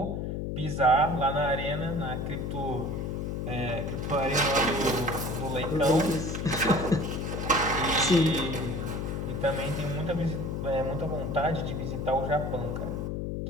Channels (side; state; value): left; noise; hum, 3 dB below the sound